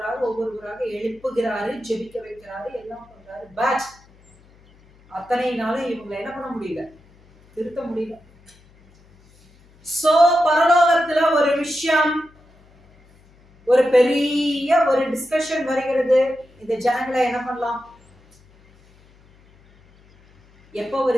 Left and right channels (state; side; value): noise; left; hum, 29 dB below the sound